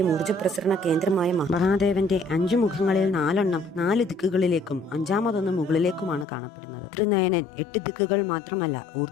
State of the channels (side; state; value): right; drops out; at 6.2 s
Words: ഊർജ്ജ പ്രസരണ കേന്ദ്രമായ മഹാദേവന്റെ 5 മുഖങ്ങളിൽ 4 4 ദിക്കുകളിലേക്കും 5ാമതൊന്ന് മുകളിലേക്കുമാണ് കാണപ്പെടുന്നത്. ത്രിനയനൻ 8 ദിക്കുകൾ മാത്രമല്ല